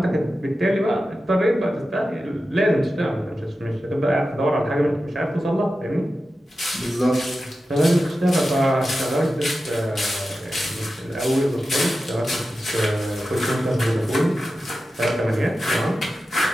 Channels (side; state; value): both; normal; correlation 0.92